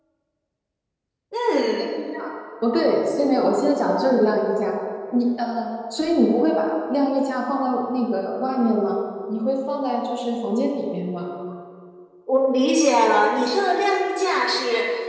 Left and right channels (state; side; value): identical; both; correlation 1.00